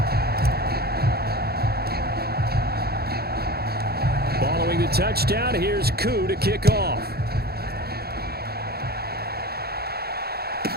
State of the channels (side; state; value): left; late; 0.46 ms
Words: Following the touchdown, here's Koo to kick off.